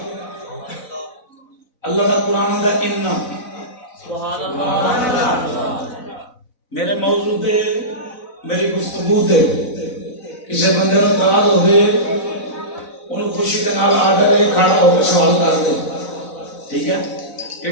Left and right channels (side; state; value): right; late; 4.0 ms